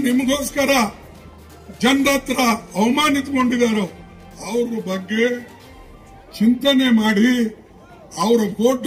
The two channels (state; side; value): identical; both; correlation 1.00